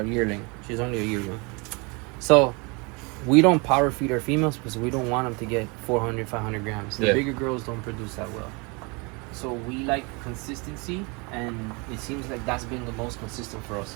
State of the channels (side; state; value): left; quieter; 29.7 dB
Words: yearling. She's only a yearling. So we don't power feed our females because we don't want them to get 400, 500 grams. The Yeah. bigger girls don't produce that well. So we like consistency, and it seems like that's been the most consistent for